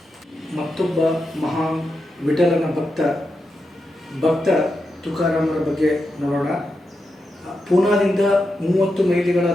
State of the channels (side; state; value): both; normal; correlation 0.87